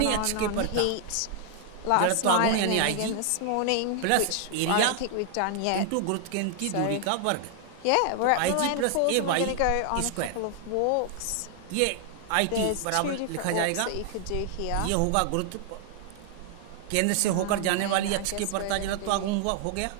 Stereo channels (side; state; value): both; different; correlation 0.00